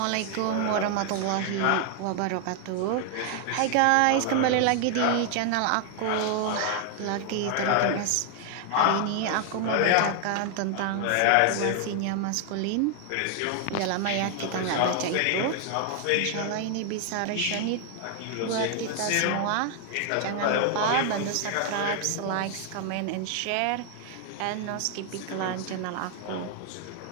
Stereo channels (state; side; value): different; both; correlation 0.00